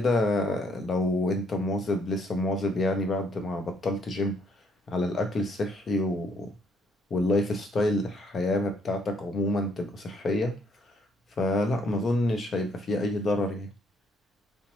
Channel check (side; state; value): both; normal; correlation 0.69